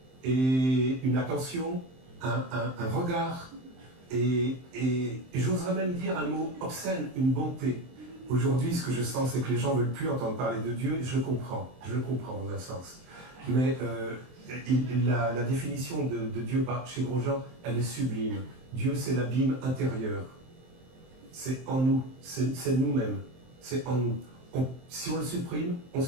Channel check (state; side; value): late; left; 23 ms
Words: et une attention, un regard, et j'oserais même dire un mot obscène, une bonté. Aujourd'hui, ce que je sens, c'est que les gens ne veulent plus entendre parler de Dieu, et je le comprends dans un sens. Mais la définition de Dieu chez Grosjean, elle est sublime. Dieu, c'est l'abîme intérieur. C'est en nous, c'est nous-mêmes, c'est en nous. Si on le supprime, on